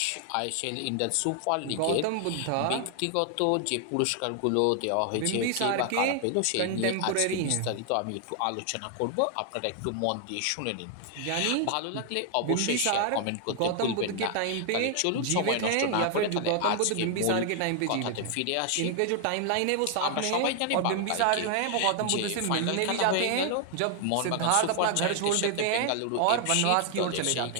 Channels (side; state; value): both; different; correlation 0.00